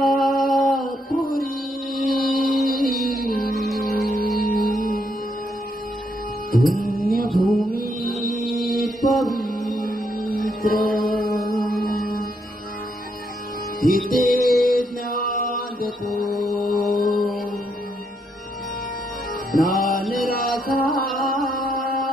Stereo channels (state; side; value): normal; both; correlation 0.76